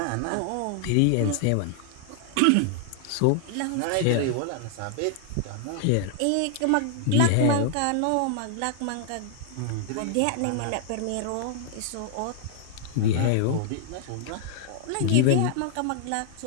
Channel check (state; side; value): different; both; correlation 0.00